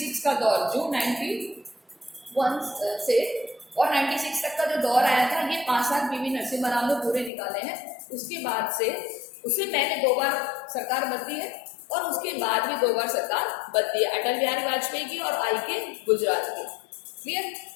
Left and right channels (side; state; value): right; drops out; at 7.3 s